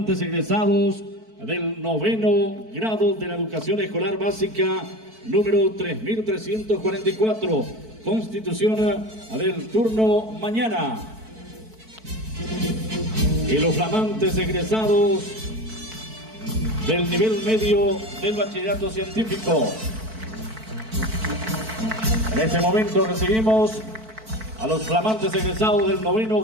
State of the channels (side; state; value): left; late; 4.5 ms